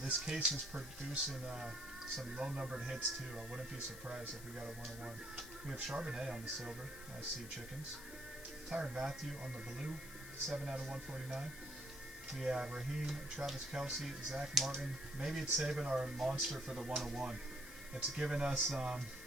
This case is producing some low-numbered hits, too. I wouldn't be surprised if we got a 101. We have Charbonnet on the silver. Nice Sea Chickens. Tyrann Mathieu on the blue. 7 out of 149. We have Raheem, Travis Kelce, Zach Martin. Maybe it's saving our monster for the 101. It's giving us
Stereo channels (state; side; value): noise; left; hiss, 14 dB below the sound